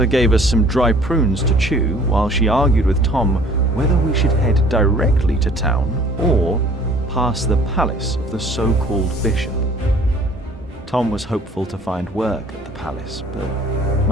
gave us some dry prunes to chew while she argued with Tom whether we should head directly to town or past the palace of the so-called bishop. Tom was hopeful to find work at the palace, but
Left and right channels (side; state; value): both; normal; correlation 0.53